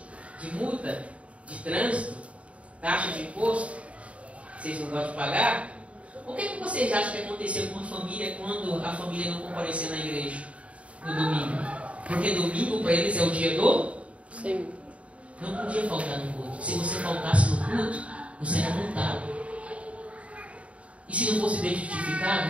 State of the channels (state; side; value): late; left; 0.064 ms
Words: De multa, de trânsito, taxa de imposto, vocês não gostam de pagar? O que vocês acham que aconteceu com a família quando a família não compareceu na igreja no domingo? Porque domingo para eles é o dia do? Sim. Não podia faltar no culto. Se você faltasse no culto, você era multado. E se não fosse bem